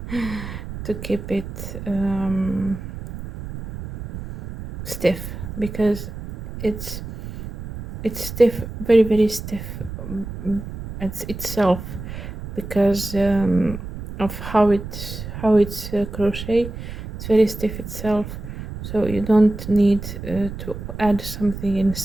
to keep it stiff, because it's stiff, very very stiff, it's itself, because of how it's crochet. It's very stiff itself, so you don't need to add something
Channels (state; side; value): noise; right; rumble, 9 dB below the sound